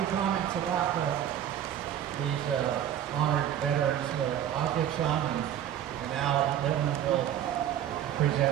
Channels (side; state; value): left; quieter; 10.5 dB